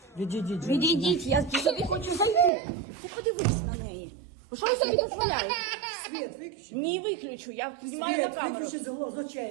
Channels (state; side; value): drops out; left; at 2.5 s